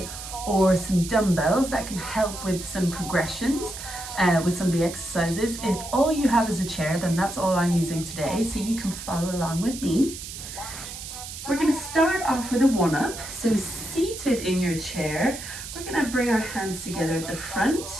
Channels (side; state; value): right; noise; hiss, 10 dB below the sound